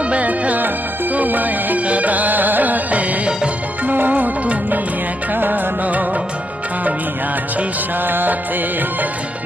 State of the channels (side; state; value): both; normal; correlation 0.79